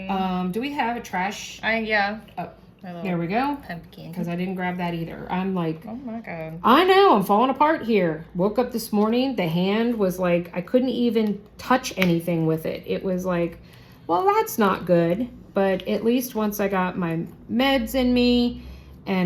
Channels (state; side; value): identical; both; correlation 1.00